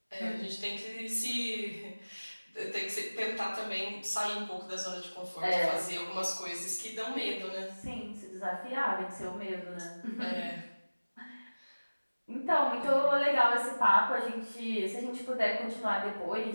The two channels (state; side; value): inverted; both; correlation -1.00